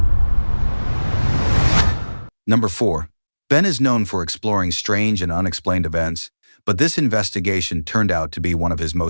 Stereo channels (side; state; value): both; inverted; correlation -1.00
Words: Number 4. Ben is known for exploring strange and unexplained events, but this investigation turned out to be one of his